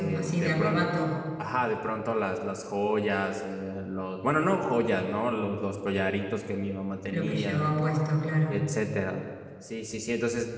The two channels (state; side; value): identical; both; correlation 1.00